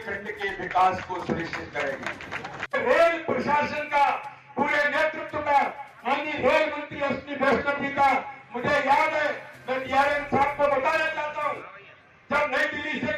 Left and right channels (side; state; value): both; identical; correlation 1.00